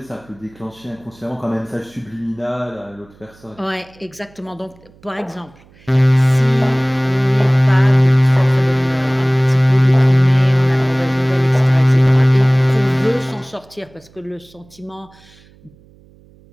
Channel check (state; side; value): noise; right; hum, 28 dB below the sound